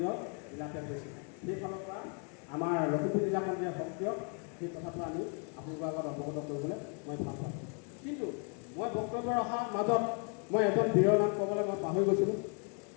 জিলাতে হৈছোঁ। সেইফালৰ পৰা আমাৰ লখিমপুৰ জিলাখন যে সক্ৰিয়, সেই কথাটো আমি আপোনালোকৰ আগত অৱগত কৰিবলৈ মই ভাল পাওঁ। কিন্তু মই বক্তব্য ৰখাৰ মাজত মই এজন বীৰৰ নাম ক'বলৈ মই পাহৰি গৈছিলোঁ।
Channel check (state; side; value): quieter; right; 38.9 dB